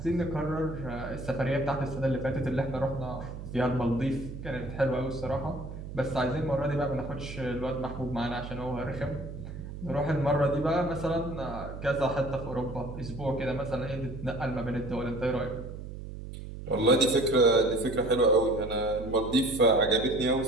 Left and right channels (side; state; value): right; noise; hum, 10 dB below the sound